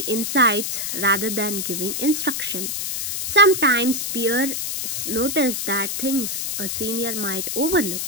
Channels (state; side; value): noise; left; hiss, 3 dB below the sound